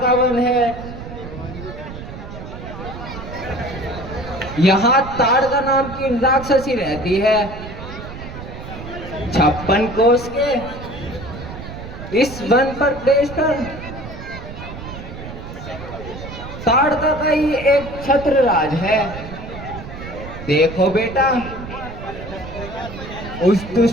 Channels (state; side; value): noise; right; rumble, 11 dB below the sound